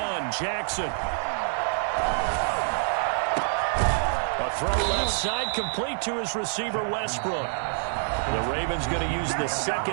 Jackson. A throw left side, complete to his receiver, Westbrook. The Ravens going to use the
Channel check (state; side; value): silent; left; 60 dB below the other